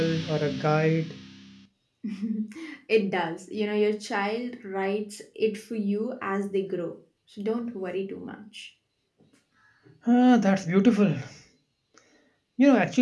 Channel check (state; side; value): identical; both; correlation 1.00